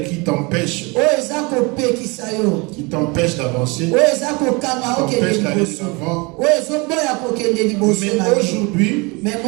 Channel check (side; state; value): left; quieter; 27.5 dB